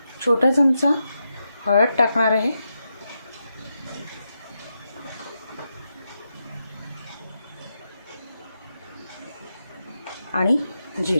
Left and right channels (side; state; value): both; inverted; correlation -0.86